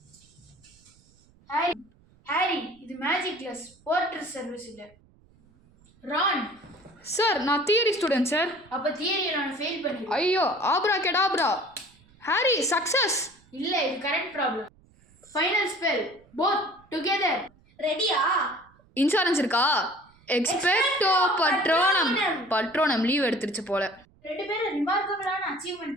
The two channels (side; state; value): right; noise; rumble, 30 dB below the sound